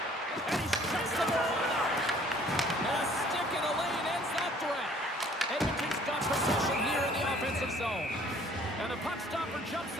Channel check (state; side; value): normal; both; correlation 0.56